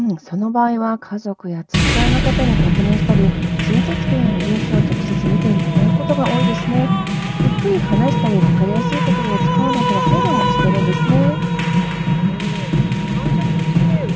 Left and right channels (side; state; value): both; identical; correlation 1.00